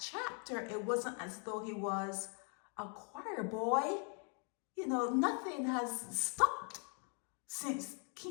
It wasn't as though he was a choir boy. Nothing has stopped since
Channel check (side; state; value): right; quieter; 38.5 dB